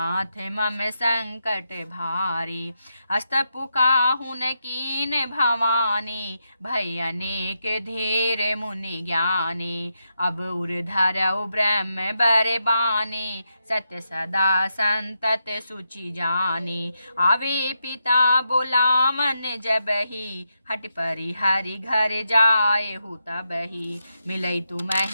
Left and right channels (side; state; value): both; inverted; correlation -0.84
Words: मम संकट भारी। अस्तपु काहुन कीन भवानी, भय अनेक धीर मुनि ज्ञानी। अब उर धरऊ ब्रह्म बर बानी, सत्य सदा संतत सुचि जानी। आवे पिता बोलावन जबहि, हट परिहरि घर जाए हु तबहि। मिलई